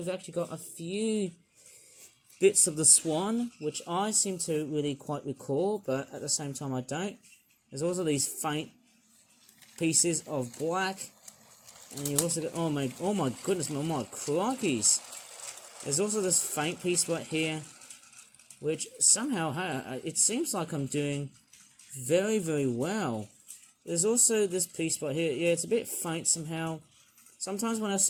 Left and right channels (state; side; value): identical; both; correlation 1.00